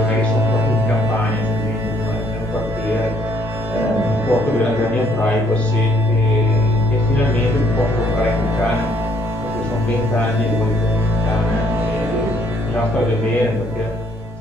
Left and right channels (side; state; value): both; normal; correlation 0.66